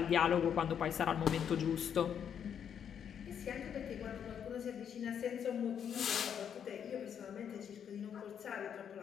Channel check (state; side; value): quieter; right; 8.3 dB